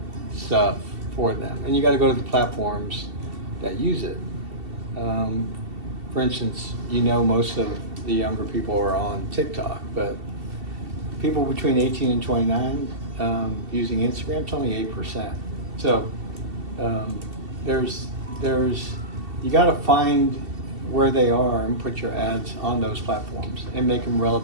stuff for them, and you got to go to the platforms that use it. For instance, most of the younger people are on TikTok, but people between 18 and 29 using Instagram, it's only 8%. So you got to find where they are and put your ads on those platforms and make them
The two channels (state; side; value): late; left; 2.7 ms